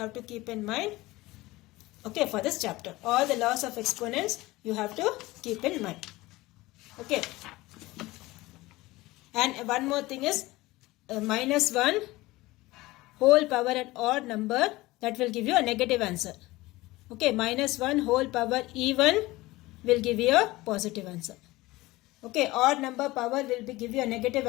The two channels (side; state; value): right; quieter; 19.6 dB